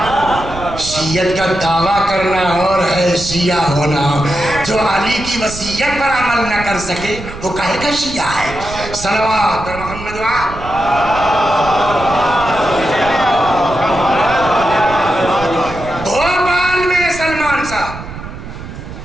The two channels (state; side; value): noise; right; rumble, 11 dB below the sound